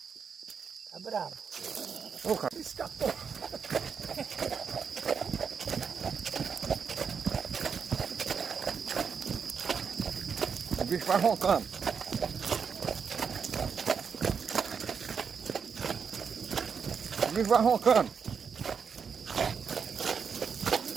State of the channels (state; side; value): quieter; left; 6.4 dB